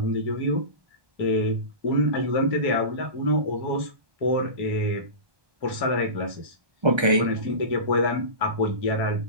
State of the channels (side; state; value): left; late; 1.3 ms